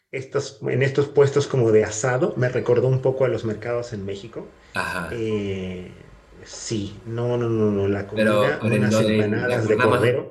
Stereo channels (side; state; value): both; identical; correlation 1.00